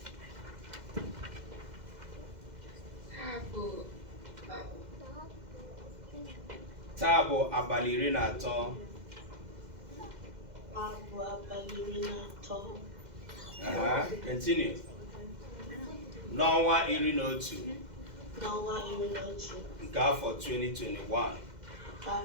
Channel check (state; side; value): late; left; 2.0 ms